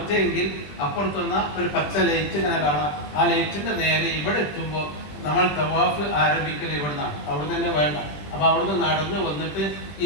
അപ്പുറത്തുന്ന ഒരു പച്ച ലൈറ്റ് ഇങ്ങനെ കാണാം. ആ ലൈറ്റിന്റെ നേരെ ഇവിടെ എത്തുമ്പോൾ നമ്മൾ തവാഫ് ആരംഭിക്കൽ ഇവിടെ നിന്നാണ്. അവിടെ തന്നെ വേണ്ട. അപ്പൊ അവിടുന്ന് നടന്ന് വന്നിട്ട്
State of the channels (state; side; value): late; right; 20 ms